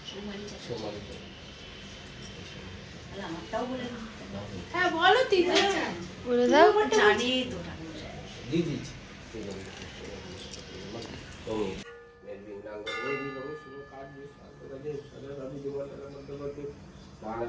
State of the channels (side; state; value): both; identical; correlation 1.00